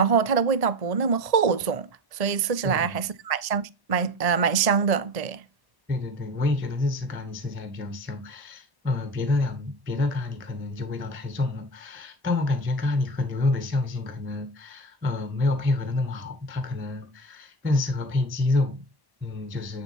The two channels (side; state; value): left; late; 1.7 ms